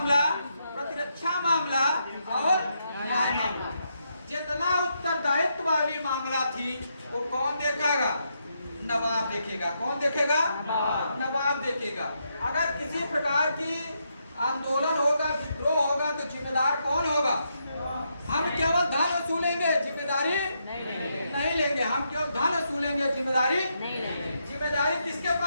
प्रतिरक्षा मामला और न्याय मामला। जितना उत्तरदायित्व वाली मामला थी वो कौन देखेगा, नवाब देखेगा। कौन देखेगा, नवाब देखेगा। अगर किसी प्रकार की आंदोलन होगा, विद्रोह होगा तो जिम्मेदार कौन होगा, हम केवल धन वसूलेंगे, जिम्मेदारी नहीं लेंगे। हम केवल धन वसूलेंगे, जिम्मेदारी जिम्मेदारी किसके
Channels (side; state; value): both; inverted; correlation -0.80